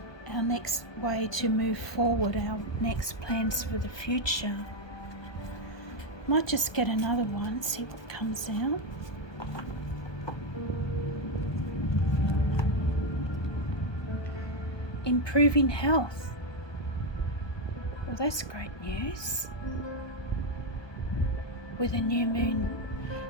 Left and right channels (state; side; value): late; right; 1.2 ms